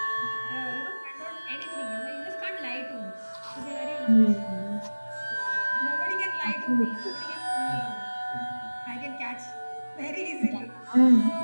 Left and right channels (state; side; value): inverted; both; correlation -1.00